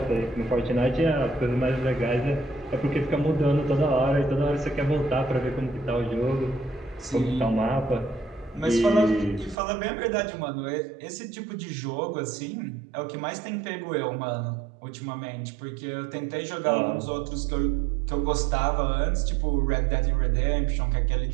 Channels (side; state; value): left; drops out; at 9.6 s